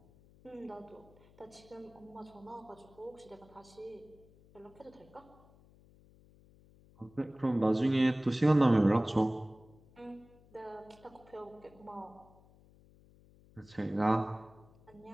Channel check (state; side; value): noise; left; hum, 26 dB below the sound